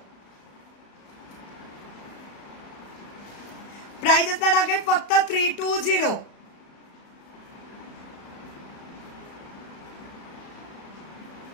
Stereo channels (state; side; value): late; right; 35 ms